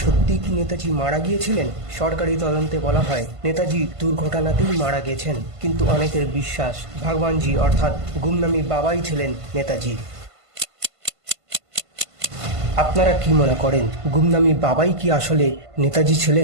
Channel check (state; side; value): late; left; 1.5 ms